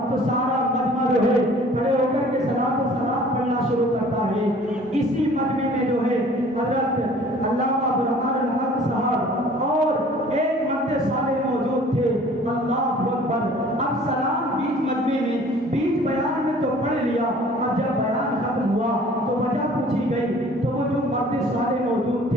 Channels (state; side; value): normal; both; correlation 0.51